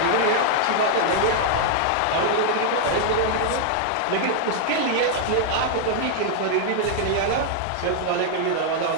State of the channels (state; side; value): different; both; correlation -0.01